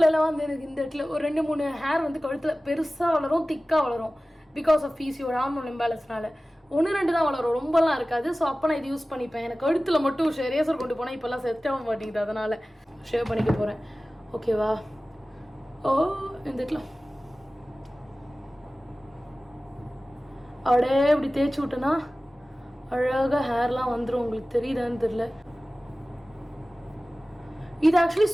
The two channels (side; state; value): both; normal; correlation 0.97